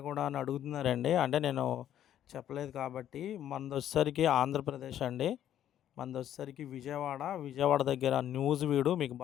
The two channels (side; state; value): right; quieter; 11.0 dB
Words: కూడా అని అడుగుతున్నారండి. అంటే నేను చెప్పలేదు కాబట్టి మనదొచ్చేసరికి ఆంధ్రప్రదేశ్ అండి. మనదొచ్చేసరికి విజయవాడ. విజయవాడ దగ్గర నూజివీడు మీకు